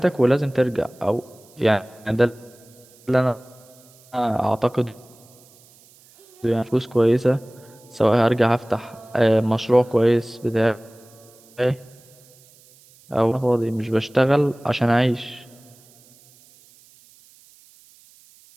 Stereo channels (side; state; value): right; noise; hiss, 27 dB below the sound